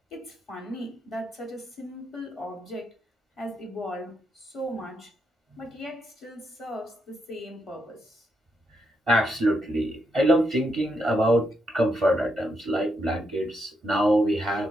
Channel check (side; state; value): both; normal; correlation 0.80